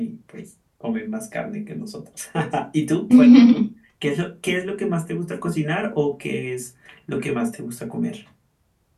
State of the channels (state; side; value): identical; both; correlation 1.00